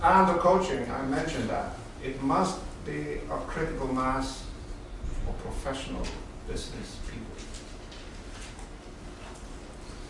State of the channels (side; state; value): both; identical; correlation 1.00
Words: And the coaching, I mentioned that. It must be a critical mass of professional business people.